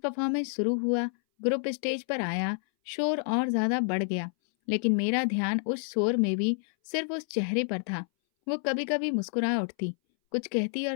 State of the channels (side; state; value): right; silent; 59 dB below the other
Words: शुरू हुआ, ग्रुप स्टेज पर आया, शोर और ज्यादा बढ़ गया। लेकिन मेरा ध्यान उस शोर में भी सिर्फ उस चेहरे पर था। वो कभी कभी मुस्कुरा उठती, कुछ कहती